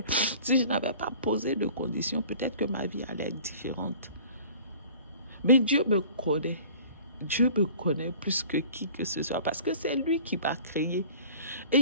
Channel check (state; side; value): inverted; both; correlation -0.46